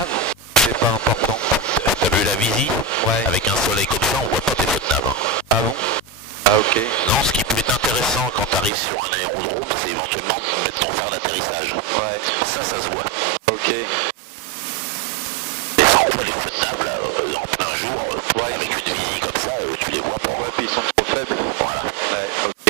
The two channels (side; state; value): left; drops out; at 8.7 s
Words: C'est pas important. T'as vu la visie? Ouais. Avec un soleil comme ça, on voit pas tes feux de nav. Ah bon? Ah ok. Non, ce qui peut être intéressant quand tu arrives sur un aérodrome, c'est éventuellement de mettre ton phare d'atterrissage. Ouais. Ça se voit. Ok. Mais sans quoi les feux de nav, là, en plein jour, Ouais. avec une visie comme ça, tu les vois pas. Ouais, puis ils sont trop faibles. Voilà. Ouais,